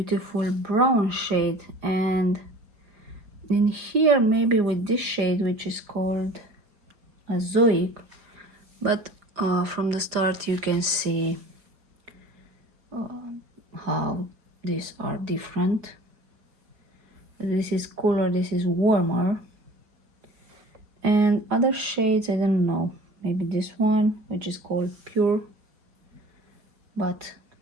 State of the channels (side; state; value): left; late; 4.9 ms